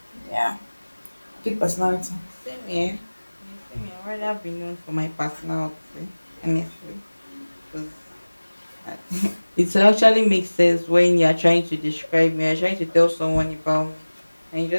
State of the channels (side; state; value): both; inverted; correlation -1.00